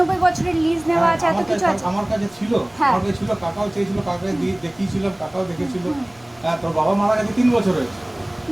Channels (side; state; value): right; noise; rumble, 30 dB below the sound